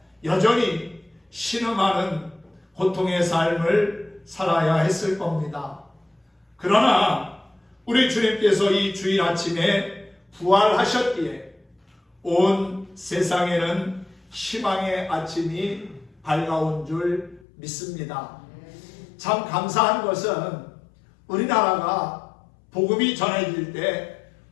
여전히 신음하는 고통의 삶을 살아야 했을 겁니다. 그러나 우리 주님께서 이 주일 아침에 부활하셨기에 온 세상에는 희망의 아침이 밝아온 줄 믿습니다. 참 감사한 것은 우리나라가 복음이 전해질 때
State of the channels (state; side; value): drops out; right; at 17.4 s